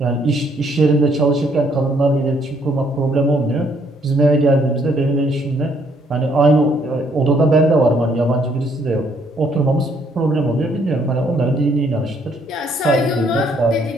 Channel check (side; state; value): both; normal; correlation 0.67